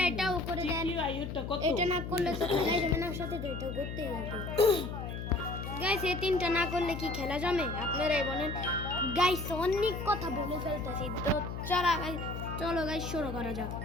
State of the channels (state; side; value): noise; left; hum, 6 dB below the sound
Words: এটাও করে দেন। এটা না করলে তো খেলা যাবে না, সাথে তো এটা করতেই হবে। গাইস, এই তিনটা না করলে কি খেলা জমে? আপনারাই বলেন। গাইস, অনেক কথা বলে ফেলতেছি, তো চলো গাইস শুরু করা যাক।